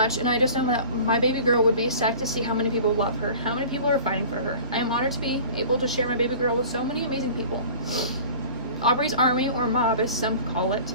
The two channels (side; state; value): both; inverted; correlation -0.42